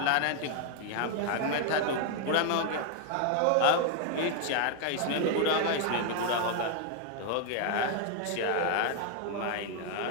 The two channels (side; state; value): both; different; correlation 0.01